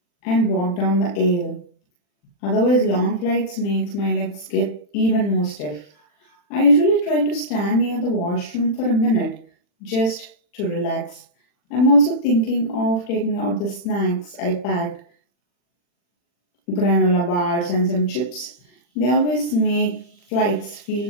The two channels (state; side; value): late; right; 40 ms